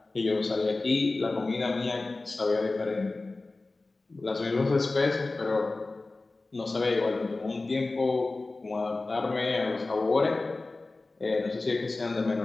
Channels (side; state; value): right; quieter; 3.3 dB